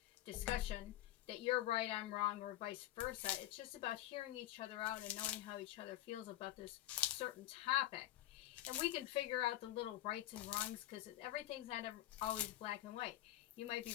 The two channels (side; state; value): right; quieter; 14.6 dB